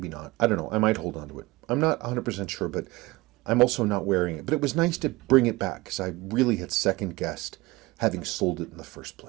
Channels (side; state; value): left; quieter; 21.4 dB